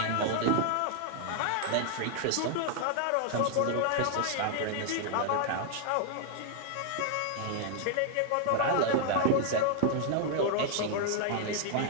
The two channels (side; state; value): both; different; correlation 0.00